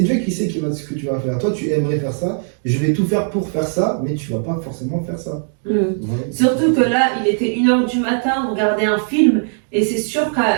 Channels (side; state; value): left; silent; digital silence